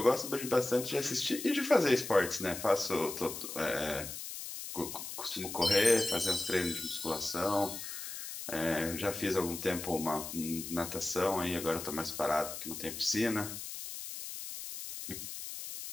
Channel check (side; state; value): left; noise; hiss, 8 dB below the sound